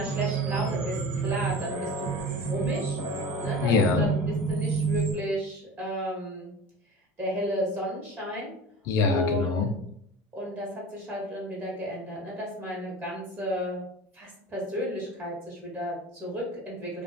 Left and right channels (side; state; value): both; normal; correlation 0.35